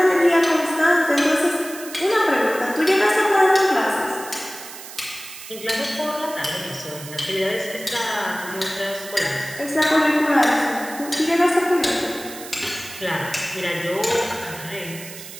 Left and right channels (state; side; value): noise; right; hiss, 14 dB below the sound